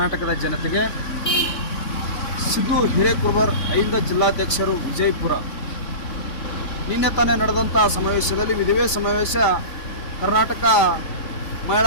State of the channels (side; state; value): right; late; 3.5 ms